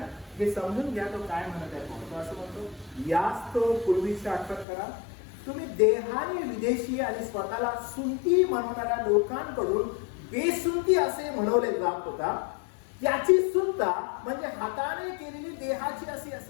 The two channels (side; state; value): right; drops out; at 4.7 s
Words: हे समजून घ्या तो काय म्हणत आहे. तो असं म्हणतो, यास्त पूर्वीची आठवण करा. तुम्ही देहाने विदेशी आणि स्वतःला सुंती म्हणणाऱ्या लोकांकडून बेसुंती असे म्हणवले जात होता. त्याची सुंता म्हणजे हाताने केलेली देहाची अशी